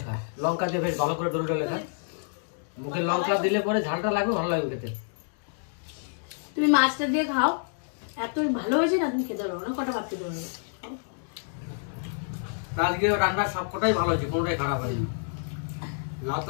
খা। লঙ্কা দিয়ে বেশ ভালো করে ডলে ডলে খা। মুখে লঙ্কা দিলে পরে ঝালটা লাগবে, ভালো লাগবে খেতে। তুমি মাছটা দিয়ে খাও, এত ভালো হয়েছে না, তুমি খেতে পারবো না, কটা ভাত খেতে পারবে। আজকে রান্নার সবকটাই ভালো হয়েছে, কোনোটাই খারাপ হয়নি। লাউ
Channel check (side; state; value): right; silent; digital silence